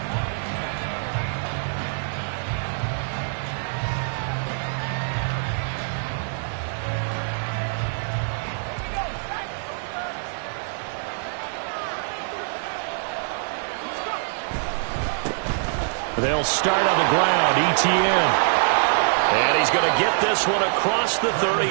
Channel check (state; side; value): silent; left; digital silence